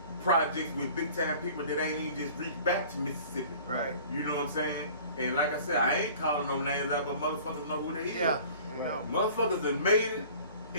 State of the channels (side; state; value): both; inverted; correlation -0.47